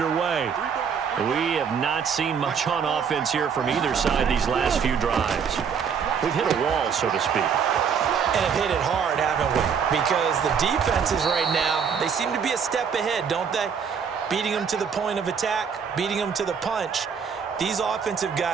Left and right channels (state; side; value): quieter; left; 6.8 dB